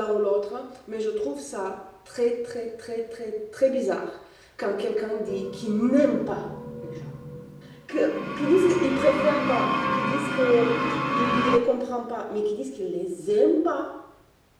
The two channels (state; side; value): identical; both; correlation 1.00